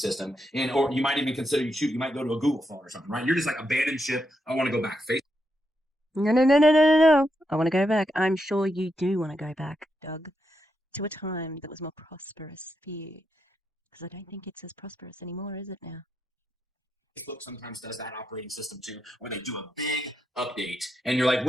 Or you might even consider you might go to a Google phone or something, right? You're just like abandoned ship. I want to go back. No. I want to go back. I'm sure you do want to go back, Doug, to a time that was more prosperous for you. Because I don't think it's as prosperous anymore, is it now? Facebook sometimes does that operating system too, where they do a big update and you're like,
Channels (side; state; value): both; normal; correlation 0.83